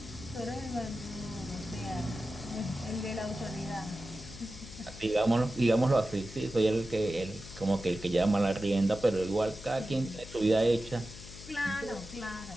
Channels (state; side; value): noise; left; hum, 15 dB below the sound